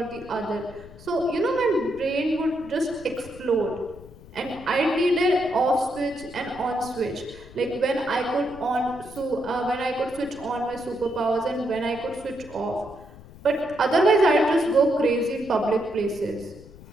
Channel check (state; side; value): noise; left; rumble, 19 dB below the sound